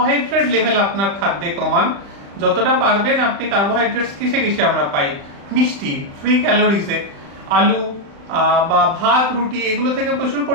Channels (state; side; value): late; left; 35 ms